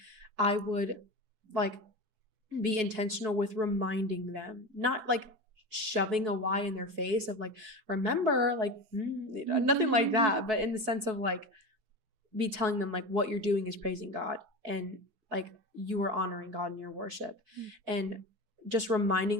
I would be intentional with reminding them, not shoving a why in their face of remember, nothing like that, but in the sense of be telling them what you're doing is praising God, and you are honoring God in your worship, and just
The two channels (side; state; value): left; late; 4.6 ms